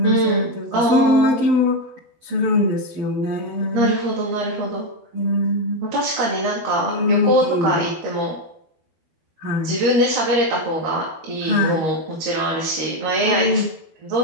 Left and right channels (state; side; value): late; left; 12 ms